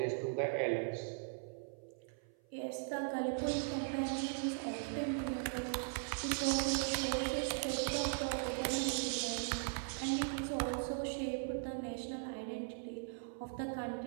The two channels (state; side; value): silent; left; 52 dB below the other